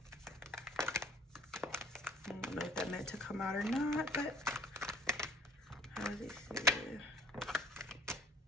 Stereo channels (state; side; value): normal; both; correlation 0.52